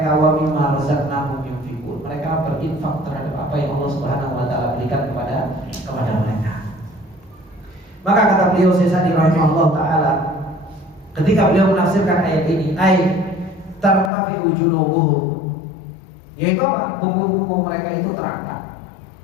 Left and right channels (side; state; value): right; drops out; at 14.1 s